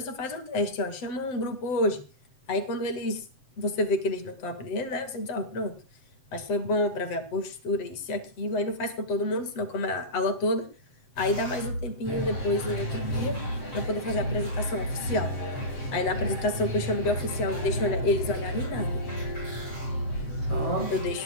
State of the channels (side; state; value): right; late; 7.7 ms